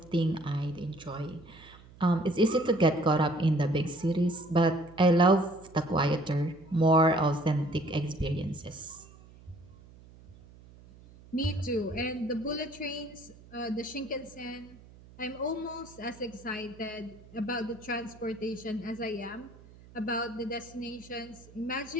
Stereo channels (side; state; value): right; noise; hum, 22 dB below the sound